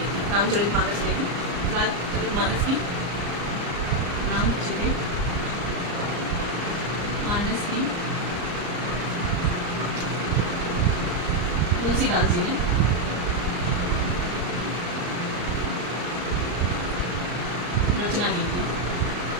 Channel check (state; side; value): late; left; 34 ms